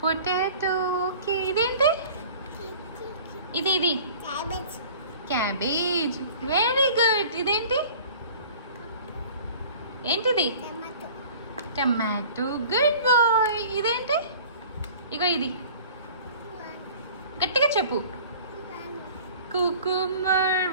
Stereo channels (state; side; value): inverted; both; correlation -0.45